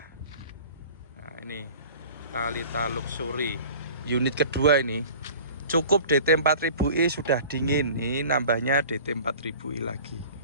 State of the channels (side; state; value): both; inverted; correlation -0.43